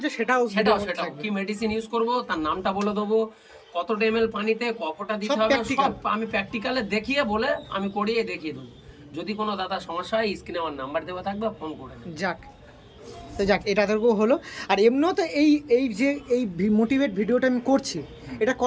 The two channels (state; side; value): identical; both; correlation 1.00